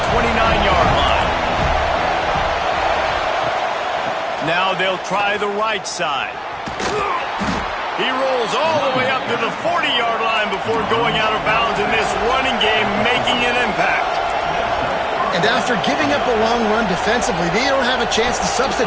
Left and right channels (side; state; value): both; identical; correlation 1.00